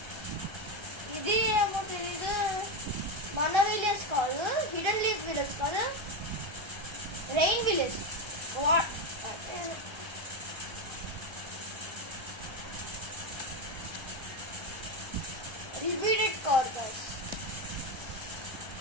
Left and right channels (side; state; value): left; late; 1.3 ms